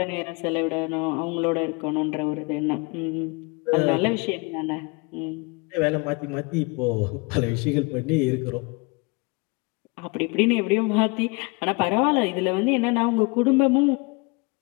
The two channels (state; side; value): quieter; right; 28.5 dB